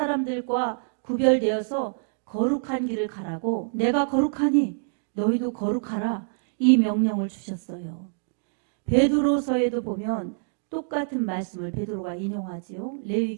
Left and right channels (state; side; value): silent; left; digital silence